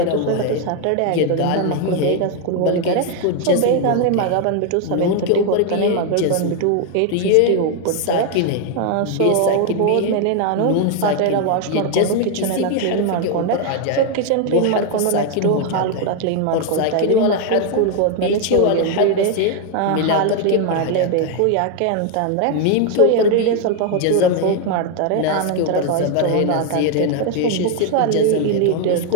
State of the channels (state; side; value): different; both; correlation 0.01